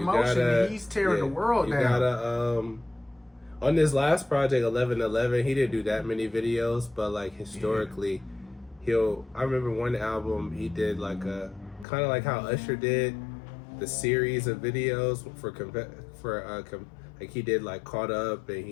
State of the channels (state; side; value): drops out; right; at 11.9 s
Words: He's tearing the world down. You gotta, on this last project, 1111, he didn't do that many videos, but like historically, I remember one album he did like a, kind of like how Usher did the series of videos like he did like Caught Up, and